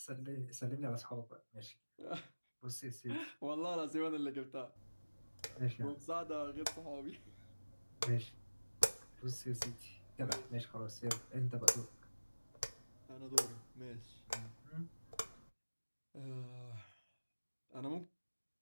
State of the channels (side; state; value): both; inverted; correlation -1.00